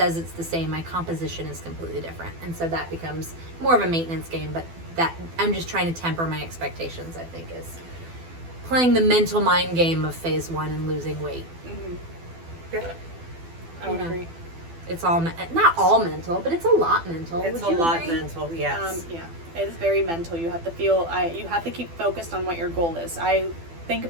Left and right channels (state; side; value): late; left; 12 ms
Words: it's the same, my composition is completely different. And so that becomes more of a maintenance game, but that I'm just trying to temper my expectations, I think, is playing the mental mind game of phase 1 and losing weight. Mm-hmm. Yeah. I would agree. It's all, not all mental, but it's a lot mental. It's Would a you lot agree? mental, yes. Yeah. It is very mental. You have to feel, you have to keep focused on what your goal is. I think